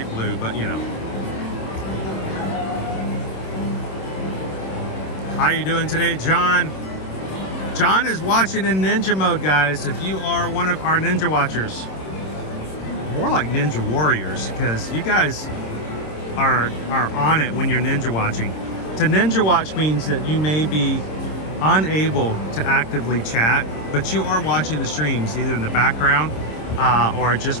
blue, but you know. How you doing today, John? John is watching in ninja mode, guys. If you are one of our ninja watchers, more like ninja warriors, because you guys are on it when you're ninja watching. To ninja watch means that you may be unable to actively chat, but you are watching the streams either in the background or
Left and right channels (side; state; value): right; late; 26 ms